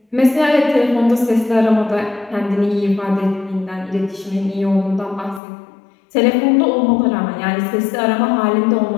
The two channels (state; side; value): drops out; right; at 5.4 s